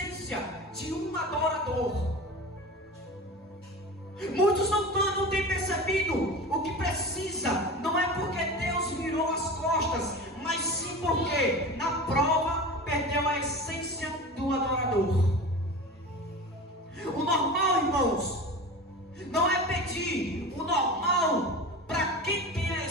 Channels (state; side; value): normal; both; correlation 0.32